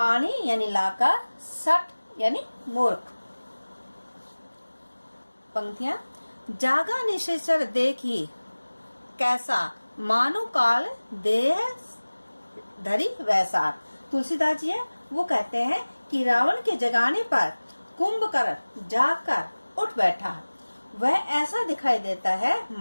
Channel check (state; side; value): inverted; both; correlation -1.00